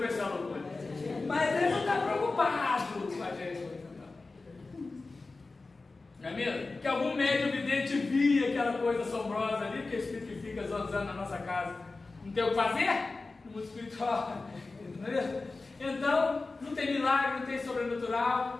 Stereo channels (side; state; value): right; quieter; 3.6 dB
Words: ser uma loucura. Mas ele não está preocupado com a gente. Não é mesmo? Que algum médium vidente via aquela coisa assombrosa ali, que o espírito fica zonzando na nossa casa. Não tem o que fazer? No mundo espiritual. Não é mesmo? Então, não tem milagre, não tem sobrenatural.